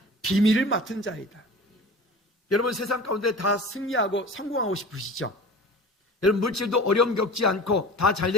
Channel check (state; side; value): normal; both; correlation 0.37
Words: 비밀을 맡은 자이다. 여러분 세상 가운데 다 승리하고 성공하고 싶으시죠? 여러분 물질도 어려움 겪지 않고 다